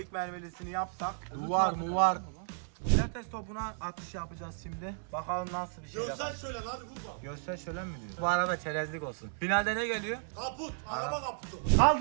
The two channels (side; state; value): left; silent; 55 dB below the other